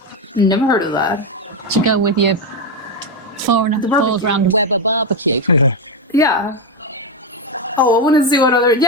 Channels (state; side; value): normal; both; correlation 0.08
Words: Never heard of that. To go with your four barbecue. round Weber barbecue. Yeah. Oh, I want to see what other.